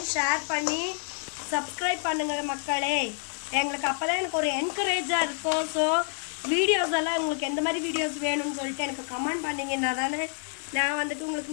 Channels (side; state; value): right; silent; 59 dB below the other